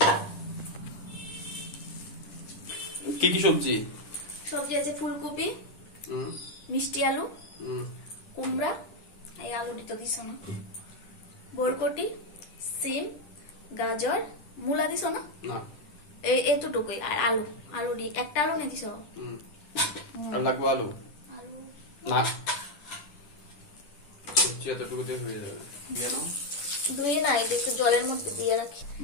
কি কি সবজি আছে? ফুলকপি, মিষ্টি আলু, কুমড়া, এই আলুটি তো দিছ না, বরকটি, সিম, গাজর, মূলা দিছ না? এতটুকুই। আর আলু দি একটা আলু নিয়ে দিছ। আর লাগবে আলু না, সবজি এতটুকু দিয়ে হয়ে যাবে। ধুয়ে না, একটু জলের মধ্যে দিয়ে রাখি।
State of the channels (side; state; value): right; late; 10 ms